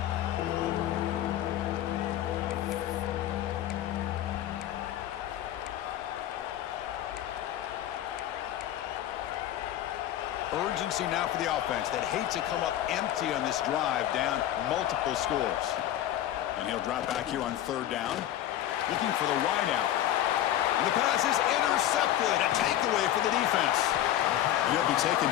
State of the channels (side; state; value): right; quieter; 12.4 dB